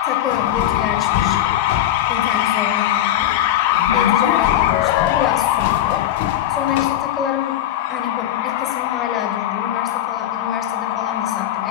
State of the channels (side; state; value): right; quieter; 12.3 dB